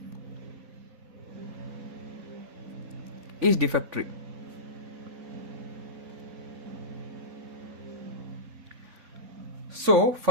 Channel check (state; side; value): late; left; 3.6 ms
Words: is defect free. So